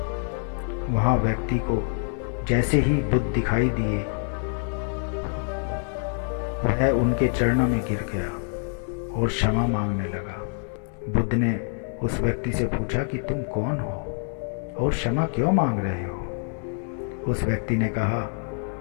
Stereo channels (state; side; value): silent; right; 56 dB below the other